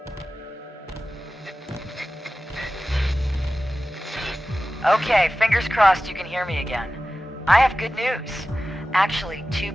Okay, fingers crossed you can hear me again. I have good news. Actually, two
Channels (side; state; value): both; normal; correlation 0.95